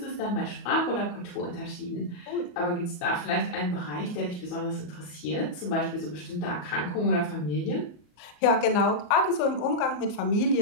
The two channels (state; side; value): late; right; 34 ms